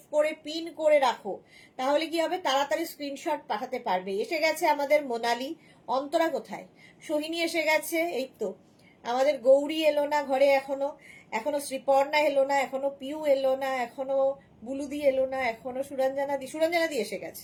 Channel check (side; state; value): both; identical; correlation 1.00